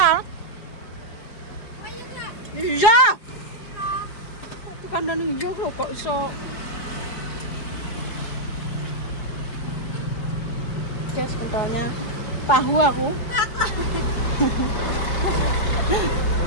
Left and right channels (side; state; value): right; late; 4.9 ms